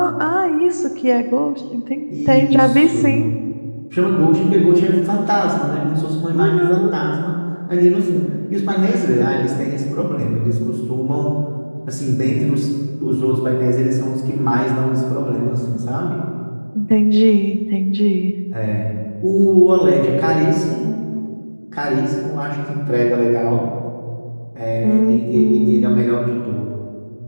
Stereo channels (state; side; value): inverted; both; correlation -1.00